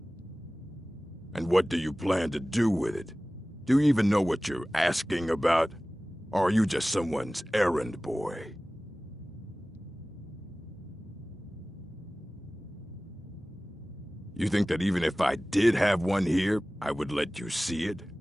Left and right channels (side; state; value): both; normal; correlation 0.98